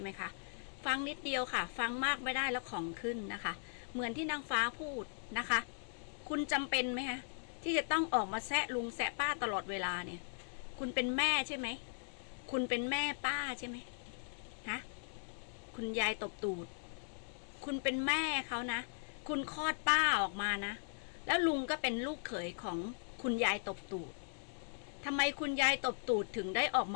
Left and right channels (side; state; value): right; silent; digital silence